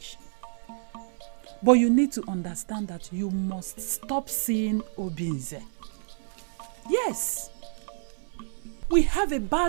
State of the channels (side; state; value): left; silent; 58 dB below the other